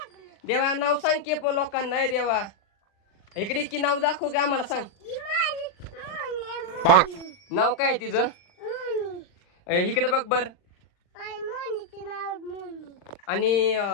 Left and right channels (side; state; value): right; late; 40 ms